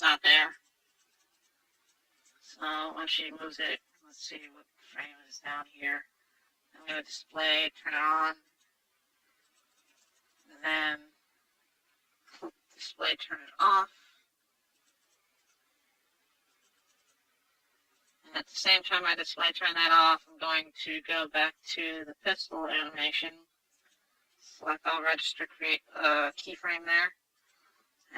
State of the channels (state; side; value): identical; both; correlation 1.00